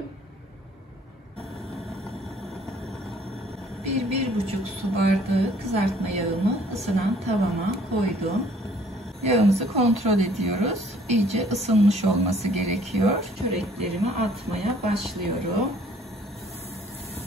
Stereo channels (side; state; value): both; normal; correlation 0.58